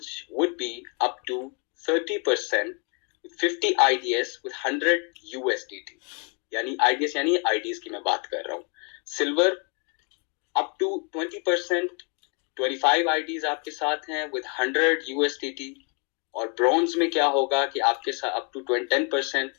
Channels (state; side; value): quieter; right; 35.0 dB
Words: would be up to 30%, 50 IDS with $100। यानी IDS यानी IDs की मैं बात कर रहा हूँ। सिल्वर up to 20%, 25 IDs आपके साथ हैं with $100। और ब्रॉन्ज में क्या होगा कि आपके साथ up to 10%